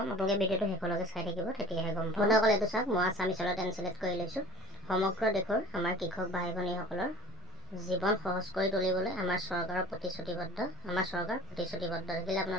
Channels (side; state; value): right; noise; hum, 27 dB below the sound